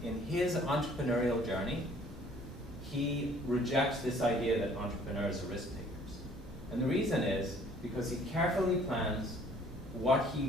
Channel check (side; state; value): both; normal; correlation 0.57